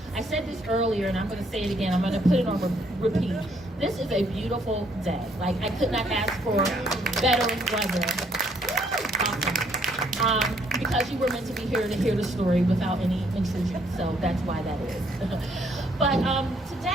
I said this earlier, and I'm going to say it again. I'm going to put it on repeat. This is a beautiful day. Like, I could not ask for better weather. Awesome. Because you were meant to be here to hear the story without any intrusion, so that's why that is. But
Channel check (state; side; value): normal; both; correlation 0.68